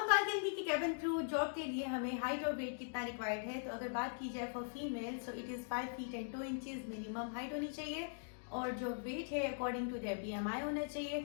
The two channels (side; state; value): right; silent; digital silence